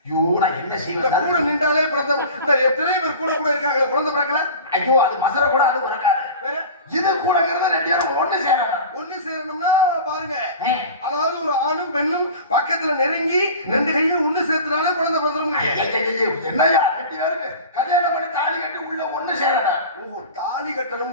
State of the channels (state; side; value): inverted; both; correlation -0.36